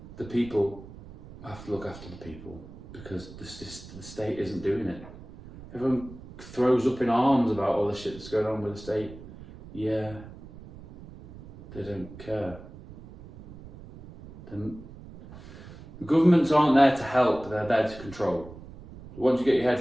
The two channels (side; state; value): right; noise; rumble, 17 dB below the sound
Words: The people have to look after the people, because the state isn't doing it. Everyone throws up in arms about all the shit that's going on with the state. Yeah, they don't care. The governments aren't there to help, they're there to control. Once you get your